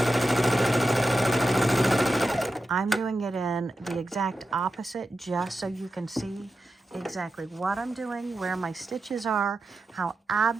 I'm doing it in the exact opposite just so you can see exactly what I'm doing, where my stitches are, how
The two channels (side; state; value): both; normal; correlation 0.90